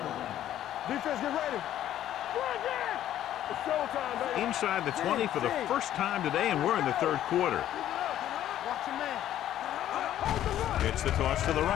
line. Defense, get ready. It's showtime, baby. Inside the 20 for the first time today, and we're in the third quarter. Watch your man. Gets the toss to the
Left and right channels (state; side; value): quieter; right; 12.0 dB